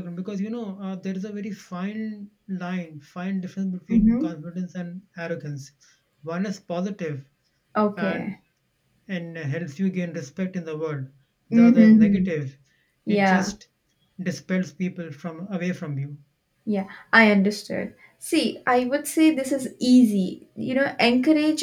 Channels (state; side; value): identical; both; correlation 1.00